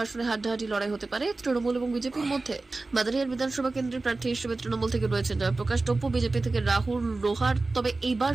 আসনে হাড্ডাহাড্ডি লড়াই হতে পারে তৃণমূল এবং বিজেপির মধ্যে। মাদারিহাট বিধানসভা কেন্দ্রের প্রার্থী হিসেবে তৃণমূল থেকে রয়েছেন জয়প্রকাশ টপ্পু, বিজেপি থেকে রাহুল রোহার। তবে এইবার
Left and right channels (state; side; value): quieter; left; 3.4 dB